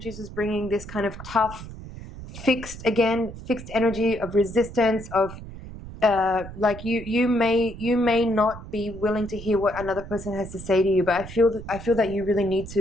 is bringing this kind of tough, fixed energy of resistance, of like you may not be willing to hear what another person has to say to you, but I feel that you really need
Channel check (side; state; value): right; noise; rumble, 13 dB below the sound